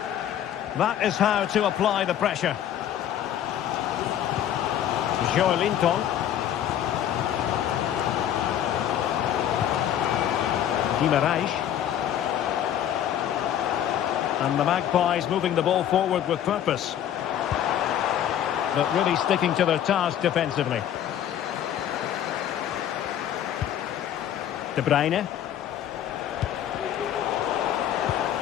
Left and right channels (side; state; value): right; quieter; 10.6 dB